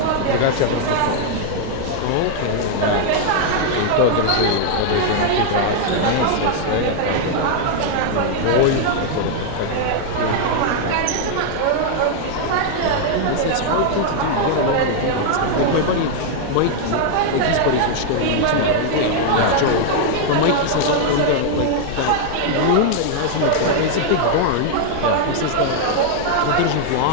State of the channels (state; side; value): different; both; correlation 0.00